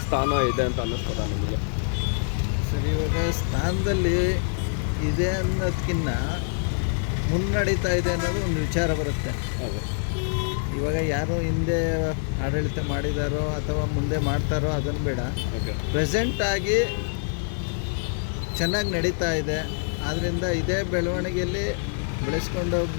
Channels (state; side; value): silent; right; 56 dB below the other